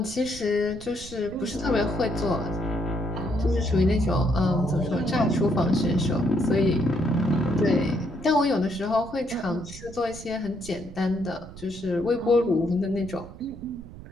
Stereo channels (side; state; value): right; noise; rumble, 16 dB below the sound